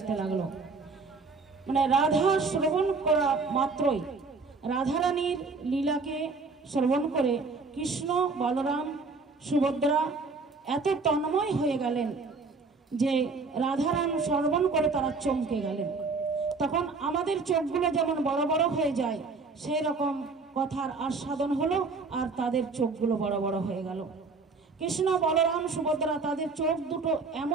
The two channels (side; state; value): left; quieter; 4.2 dB